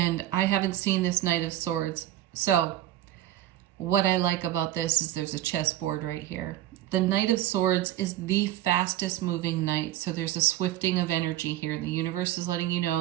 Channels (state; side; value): quieter; left; 13.6 dB